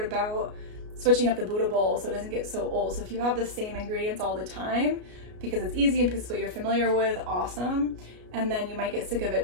about switching up the Buddha bowl so it doesn't get so old. So if you have the same ingredients all the time, because it's easy and because it's what you're familiar with, awesome. And then you might get sick of it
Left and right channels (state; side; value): late; left; 33 ms